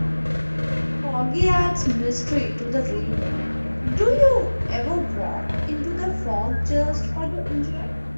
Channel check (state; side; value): inverted; both; correlation -1.00